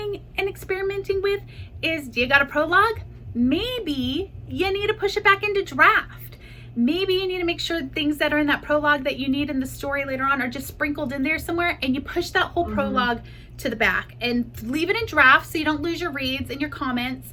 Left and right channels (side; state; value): both; identical; correlation 1.00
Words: and experimenting with is, do you got a prologue? Maybe you need to push it back into draft. Maybe you need to make sure things that are in that prologue that you need in the story later on are just sprinkled in there somewhere, and you push that whole prologue to the back and leave it in draft so you don't lose your reads and your comments